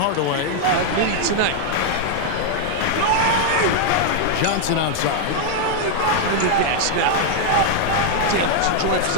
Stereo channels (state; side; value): different; both; correlation 0.00